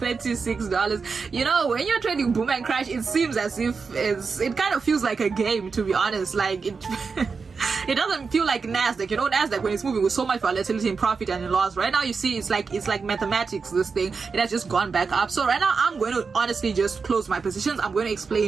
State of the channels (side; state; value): left; quieter; 5.0 dB